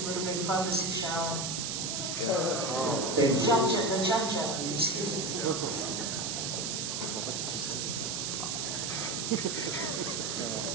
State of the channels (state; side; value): noise; right; hiss, 2 dB below the sound